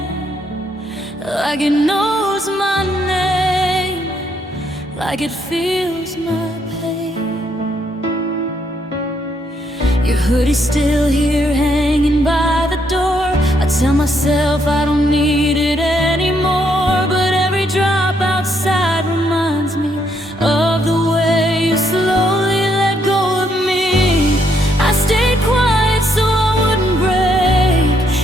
like it knows my name, like it feels my pain. Your hoodie's still here hanging by the door. I tell myself I don't need it anymore, but every drop outside reminds me of the way you slowly let go of me. I stayed quiet so I wouldn't break,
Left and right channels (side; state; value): both; normal; correlation 0.74